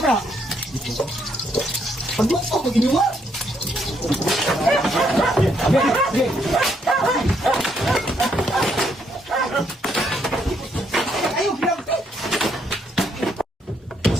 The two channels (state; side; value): normal; both; correlation 0.73